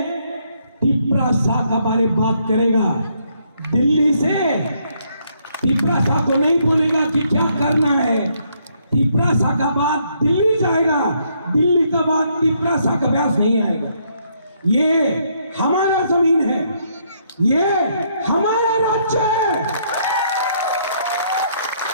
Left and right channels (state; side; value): inverted; both; correlation -0.72